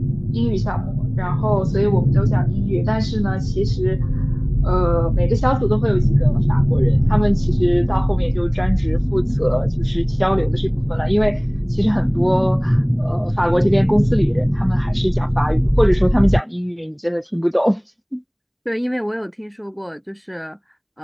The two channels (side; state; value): both; identical; correlation 1.00